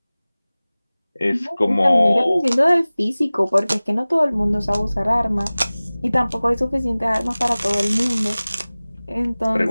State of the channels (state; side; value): inverted; both; correlation -0.99